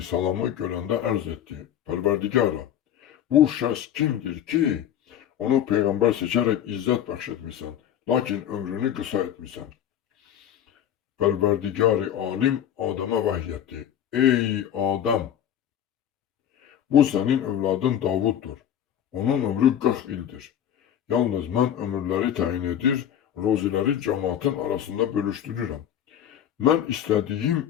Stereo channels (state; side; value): quieter; right; 10.1 dB